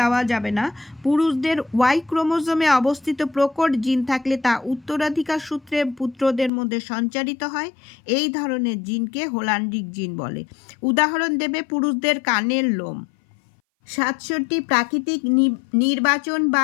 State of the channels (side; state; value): right; drops out; at 6.5 s